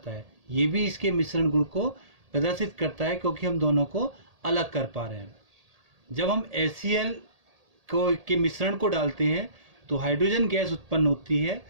है। ये भी इसके मिश्रण गुण को प्रदर्शित करता है क्योंकि हम दोनों को अलग कर पा रहे हैं। जब हम HCl के मिश्रण को डालते हैं तो हाइड्रोजन गैस उत्पन्न होती है।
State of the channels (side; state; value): left; late; 1.8 ms